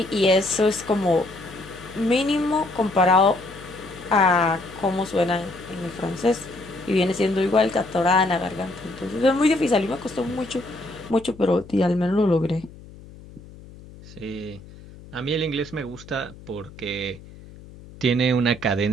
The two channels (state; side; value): noise; left; hum, 19 dB below the sound